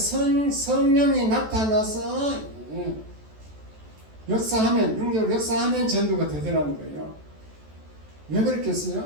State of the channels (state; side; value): late; left; 14 ms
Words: 나타나서 역사하면, 능력으로 역사하면 전도가 되더라는 거예요. 왜